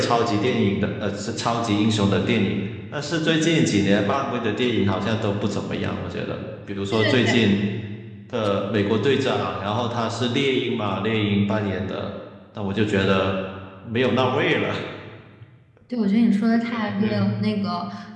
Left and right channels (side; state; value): both; identical; correlation 1.00